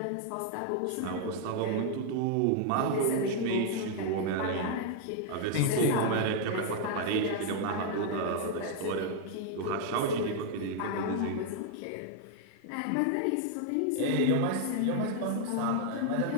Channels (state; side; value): different; both; correlation 0.00